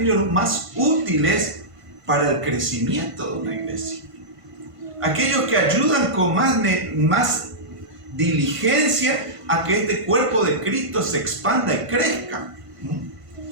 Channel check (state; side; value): late; left; 1.5 ms